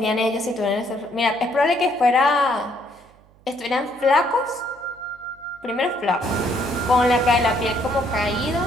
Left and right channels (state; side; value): noise; right; hum, 29 dB below the sound